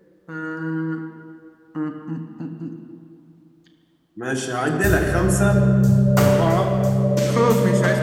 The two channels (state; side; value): identical; both; correlation 1.00